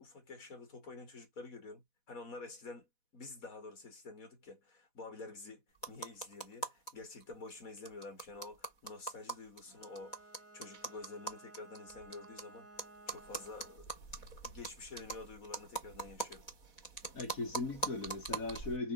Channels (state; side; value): late; right; 4.1 ms